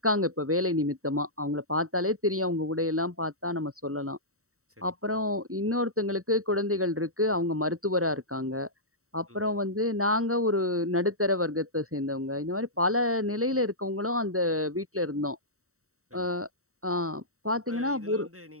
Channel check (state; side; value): late; left; 0.64 ms